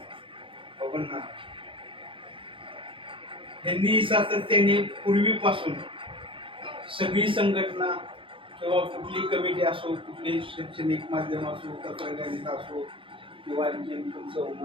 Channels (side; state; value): left; late; 0.25 ms